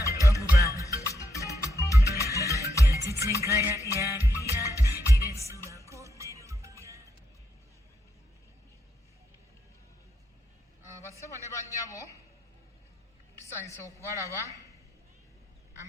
Basebo ne bannyabo tusanyusa okubalaba.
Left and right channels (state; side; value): normal; both; correlation 0.79